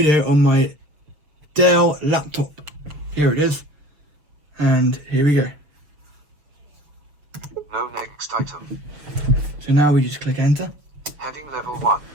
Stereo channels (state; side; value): late; left; 6.7 ms